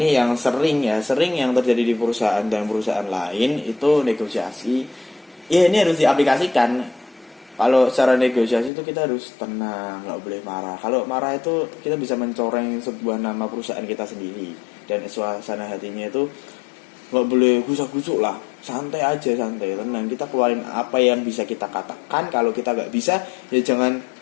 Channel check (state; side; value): drops out; right; at 8.7 s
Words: yang sering yang terjadi di perusahaan dan perusahaan lain itu negosiasi. Ya ini harus diaplikasikan. Kalau secara negosiasi itu kita harus tenang, nggak boleh marah. Kalau marah itu kita bisa mencoreng sebuah nama perusahaan kita sendiri. Dan suasana hatinya itu nggak boleh gusak-gusuk lah. Santai aja, santai, tenang. Kita keluarin apa yang bisa kita katakan. Kalau kita nggak bisa, ya jangan